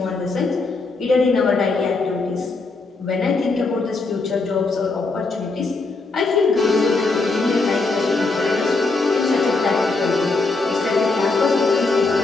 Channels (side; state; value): right; quieter; 3.7 dB